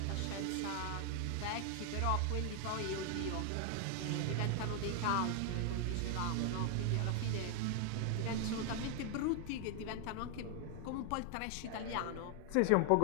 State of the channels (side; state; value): both; different; correlation 0.00